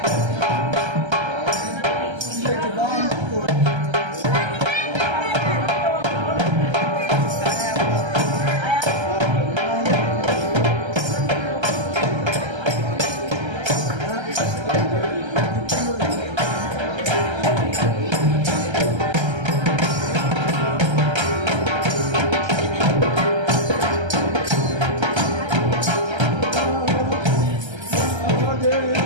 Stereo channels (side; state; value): left; late; 1.3 ms